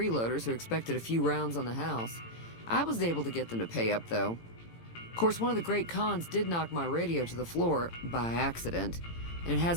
who expected a few rounds on the house. I was able to get them to pay up, though. Of course, one of the great cons did knock my radio to the floor by accident, and it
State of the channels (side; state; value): right; late; 18 ms